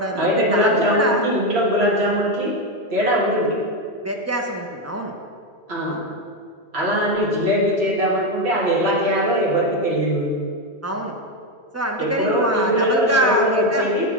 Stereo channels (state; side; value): normal; both; correlation 0.09